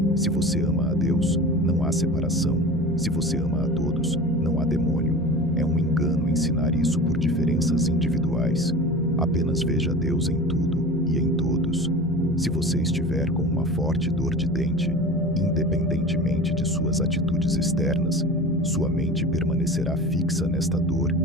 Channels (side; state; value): both; normal; correlation 0.35